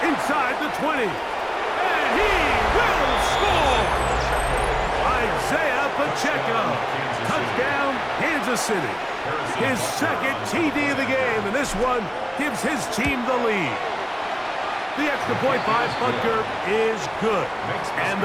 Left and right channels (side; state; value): both; identical; correlation 1.00